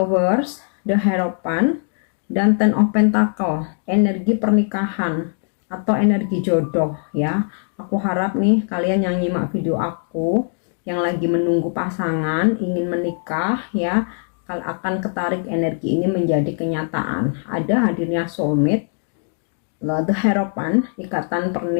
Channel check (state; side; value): silent; right; 61 dB below the other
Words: The Hierophant, dan Ten of Pentacle, energi pernikahan atau energi jodoh ya. Aku harap nih kalian yang nyimak video aku yang lagi menunggu pasangan, ingin menikah ya, akan ketarik energi ini menjadi kenyataan. Ada hadirnya soulmate, The Hierophant, ikatan